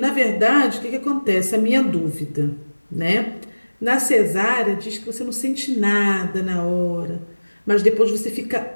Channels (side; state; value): both; inverted; correlation -1.00